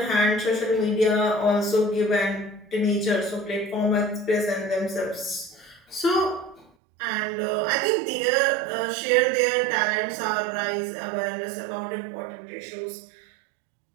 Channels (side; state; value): left; drops out; at 6.7 s